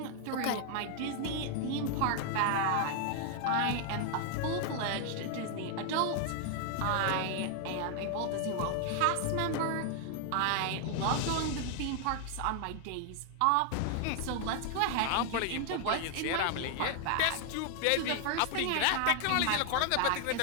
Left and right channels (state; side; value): different; both; correlation 0.00